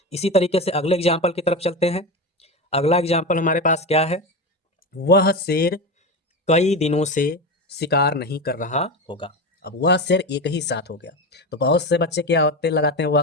इसी तरीके से अगले एग्जाम्पल की तरफ चलते हैं। अगला एग्जाम्पल हमारे पास क्या है, वह शेर कई दिनों से शिकार नहीं कर रहा होगा। अब वह शेर एक ही साथ हो गया। तो बहुत से बच्चे क्या होते लगाते हैं, वह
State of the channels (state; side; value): normal; both; correlation 0.20